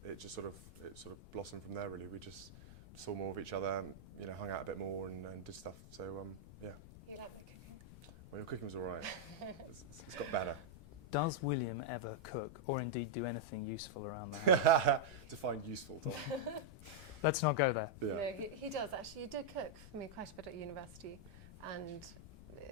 it just sort of blossomed from there. Really, we just saw more of each other, hung out a bit more and did stuff. So yeah. You like my cooking? Well, your cooking was all right. It's got better. Does William ever cook, or indeed do anything useful around there? Define useful, Tom. Let's not go there. Yeah. No, he does actually. He did cook for me quite a bit at university, and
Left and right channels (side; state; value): left; noise; rumble, 16 dB below the sound